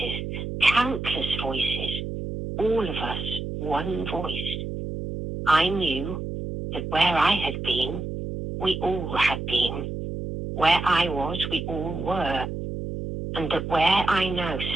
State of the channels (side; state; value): right; noise; hum, 5 dB below the sound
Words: countless voices, all of us, one voice. I knew that where I had been, we all had been. Where I was, we all were. And that where I now